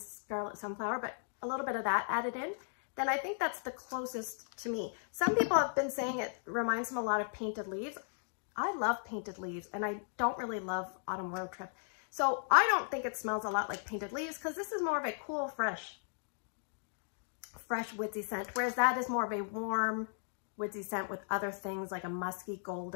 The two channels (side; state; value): right; silent; digital silence